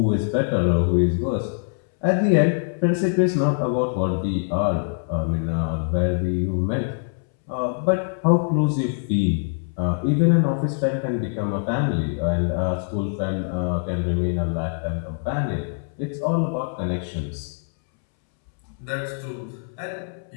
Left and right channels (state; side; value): silent; right; 63 dB below the other